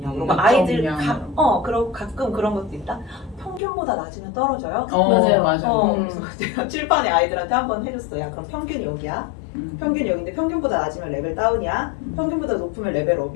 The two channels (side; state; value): right; drops out; at 3.6 s